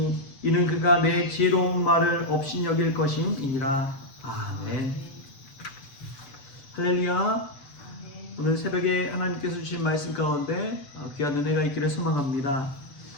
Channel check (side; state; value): right; late; 7.0 ms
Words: 이는 그가 내 지혜로운 말을 업신여길 것임이니라. 아멘. 할렐루야. 오늘 새벽에 하나님께서 주신 말씀 가운데 귀한 은혜가 있기를 소망합니다.